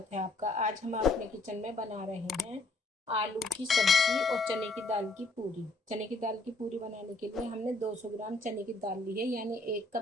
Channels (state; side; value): quieter; right; 3.0 dB